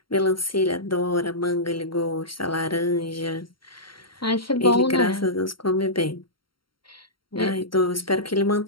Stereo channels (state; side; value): late; right; 0.73 ms